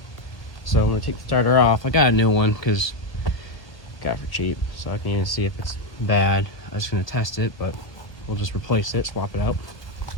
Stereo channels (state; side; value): late; right; 1.1 ms